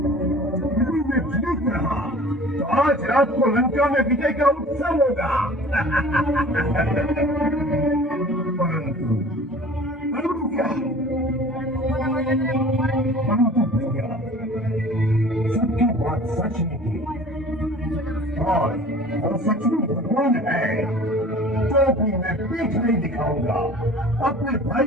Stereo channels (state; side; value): normal; both; correlation 0.45